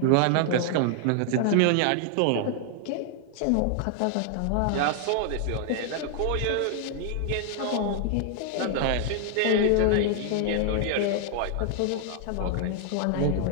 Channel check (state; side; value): different; both; correlation 0.00